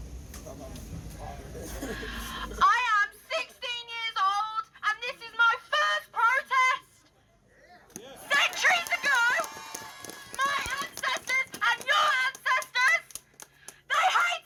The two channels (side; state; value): both; identical; correlation 1.00